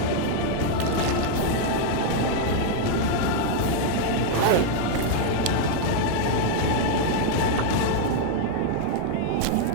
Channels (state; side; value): different; both; correlation 0.00